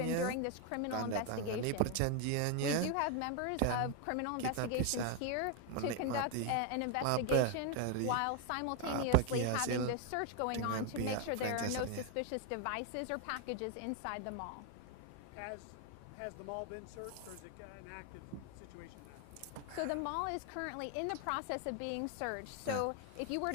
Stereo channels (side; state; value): both; different; correlation 0.01